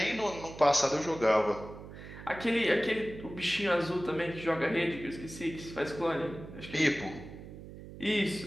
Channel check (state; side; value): noise; right; hum, 14 dB below the sound